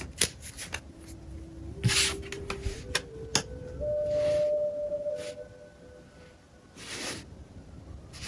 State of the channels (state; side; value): identical; both; correlation 1.00